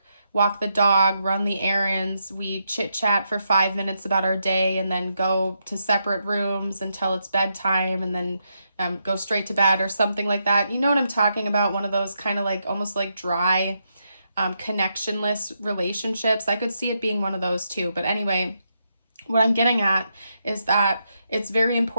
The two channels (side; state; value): both; inverted; correlation -0.82